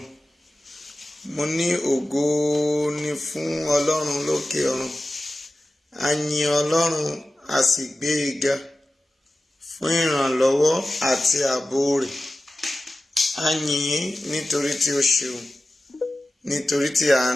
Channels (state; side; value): normal; both; correlation 0.95